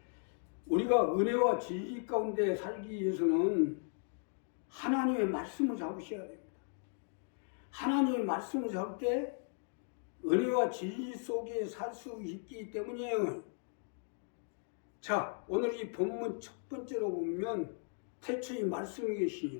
우리가 은혜와 진리 가운데 살기 위해서는 하나님의 말씀을 잡으셔야 됩니다. 하나님의 말씀을 잡을 때 은혜와 진리 속에 살 수 있기 때문이에요. 자, 오늘 이 본문 첫 번째로 보면 태초에 말씀이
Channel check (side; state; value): right; silent; 53 dB below the other